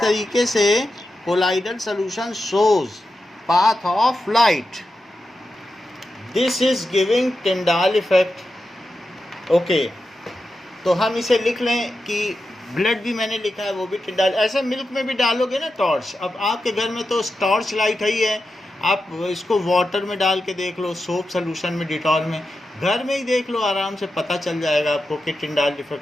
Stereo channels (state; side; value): normal; both; correlation 0.90